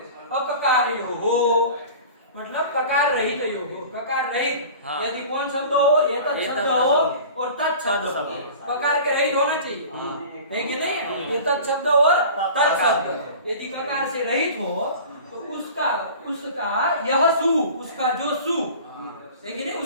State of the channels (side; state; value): both; inverted; correlation -0.40